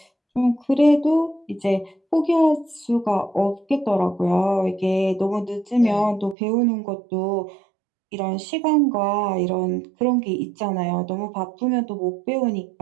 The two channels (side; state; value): left; drops out; at 6.4 s